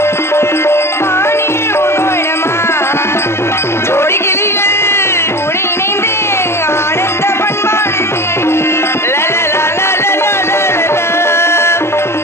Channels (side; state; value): right; late; 0.12 ms